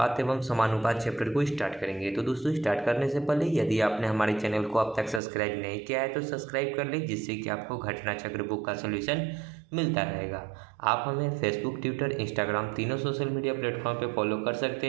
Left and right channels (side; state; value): left; drops out; at 5.2 s